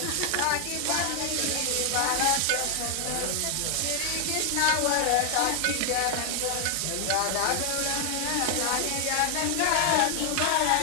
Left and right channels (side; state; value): both; different; correlation 0.00